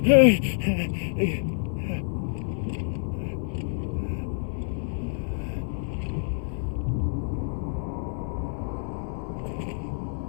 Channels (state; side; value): silent; right; 60 dB below the other